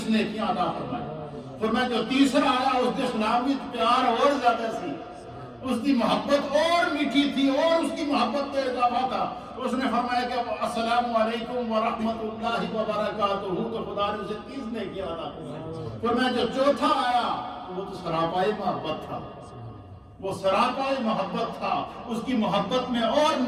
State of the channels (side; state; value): both; identical; correlation 1.00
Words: نیکیاں عطا فرمائی۔ فرمایا جو تیسرا آیا اس کے سلام میں پیار اور زیادہ سی، اس کی محبت اور میٹھی تھی اور اس کی محبت میں اضافہ تھا، اس نے فرمایا کہ السلام علیکم ورحمۃ اللہ وبرکاتہ، تو خدا نے اسے 30 نیکیاں عطا فرمائی۔ فرمایا جو چوتھا آیا وہ تو سراپائی محبت تھا، وہ سراپائی محبت تھا، اس کی محبت میں اور